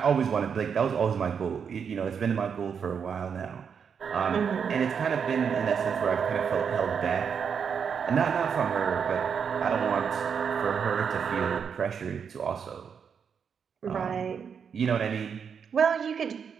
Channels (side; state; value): left; quieter; 6.8 dB